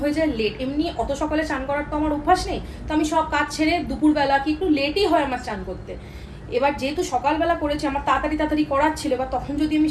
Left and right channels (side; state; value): both; identical; correlation 1.00